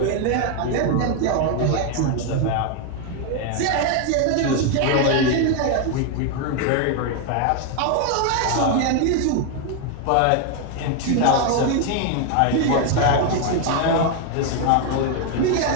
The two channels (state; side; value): different; both; correlation 0.01